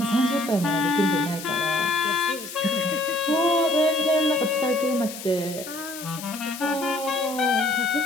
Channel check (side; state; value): left; noise; hiss, 11 dB below the sound